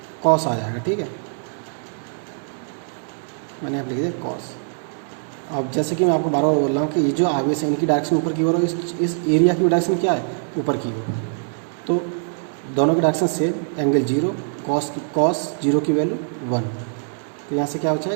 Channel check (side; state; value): left; silent; digital silence